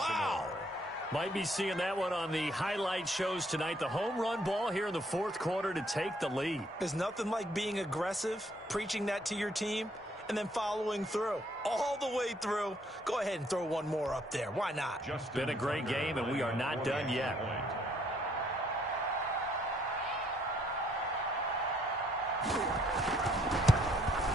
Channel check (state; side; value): normal; both; correlation 0.67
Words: Might be seeing that one on the highlight shows tonight. The home run ball here in the fourth quarter to take the lead. There's nothing like being aggressive, preaching that to your team, and then following through. All the way through. Go ahead and throw one more up there. Why not? Been a great game, and we are not done yet.